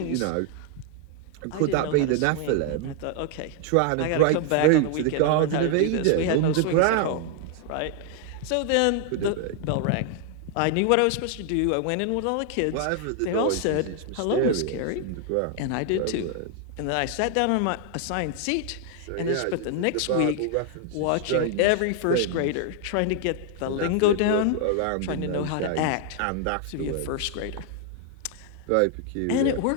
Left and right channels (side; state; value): both; different; correlation 0.00